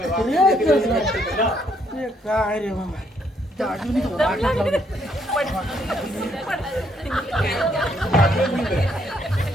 ते काय रे बाबा त्या अजूनही तो वाटच लावली.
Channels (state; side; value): normal; both; correlation 0.71